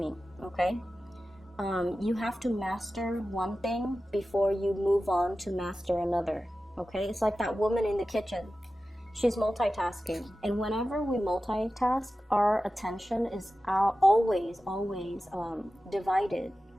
okay? You have to master one thing before you move on to master another, okay? It's like that woman in the kitchen. She's multitasking, and whenever we multitask, our attention is always divided.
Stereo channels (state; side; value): normal; both; correlation 0.94